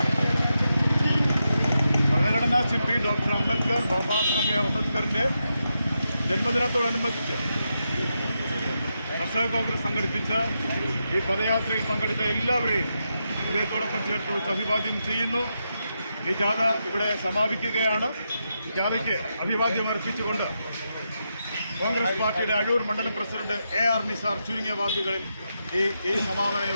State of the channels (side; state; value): both; inverted; correlation -0.85